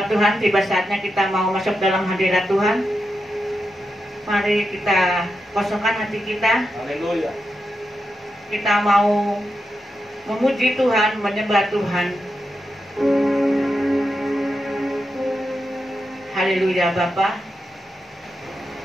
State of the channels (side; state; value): both; normal; correlation 0.87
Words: Tuhan, tiba saatnya kita mau masuk dalam hadirat Tuhan. Mari kita kosongkan hati kita. Haleluya. Kita mau memuji Tuhan, menyembah Tuhan. Haleluya Bapa.